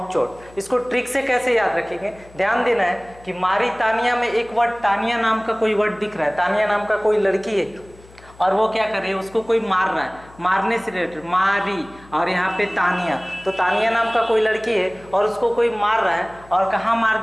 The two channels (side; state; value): left; noise; hum, 23 dB below the sound